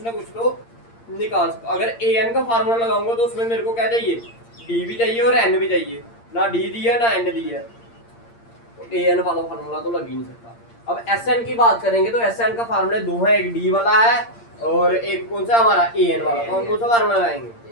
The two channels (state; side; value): late; right; 8.7 ms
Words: ना कुछ तो निकाल सकता। अगर an का फार्मूला लगाऊंगा तो उसमें मेरे को क्या चाहिए? d भी चाहिए और n भी चाहिए। ना d दी है ना n दी है, तो an वाला फार्मूला तो लग ही नहीं सकता। अब sn की बात करेंगे तो sn का फार्मूला दो है, एक d वाला है और एक कौन सा हमारा an वाला। तो हम कौन सा फार्मूला लगाएंगे?